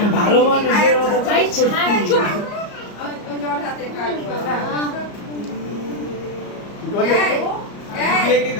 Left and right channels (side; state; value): right; late; 34 ms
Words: ভালো মানুষের মতো ভাই ছাড় চুপ বিয়াকে